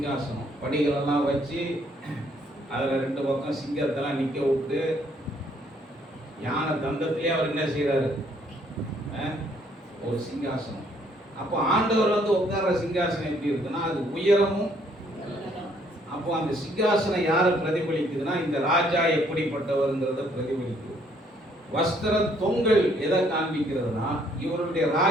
படிகளெல்லாம் வச்சு அதுல 2 பக்கம் சிங்கத்தெல்லாம் நிக்க விட்டு யானை தந்தத்திலே அவர் என்ன செய்யறாரு, ஒரு சிங்காசனம். அப்போ ஆண்டவர் உட்கார்ற சிங்காசனம் எப்படி இருக்குன்னா அது உயரமும். அப்போ அந்த சிங்காசனம் யாரை பிரதிபலிக்குதுன்னா இந்த ராஜா எப்படிப்பட்டவர்ங்கிறத பிரதிபலிக்குது. வஸ்திர தொங்கல் எதை காண்பிக்கிறதுனா இவருடைய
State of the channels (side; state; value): both; normal; correlation 0.66